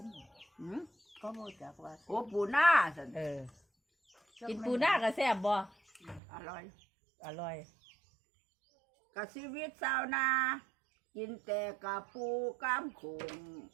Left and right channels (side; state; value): left; drops out; at 6.2 s